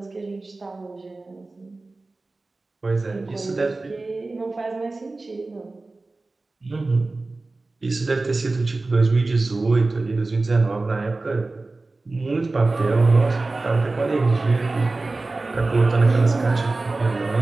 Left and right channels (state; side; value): quieter; left; 3.3 dB